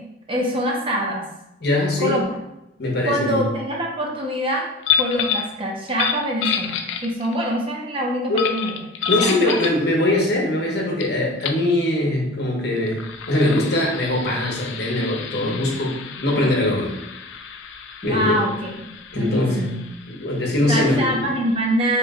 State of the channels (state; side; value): normal; both; correlation 0.38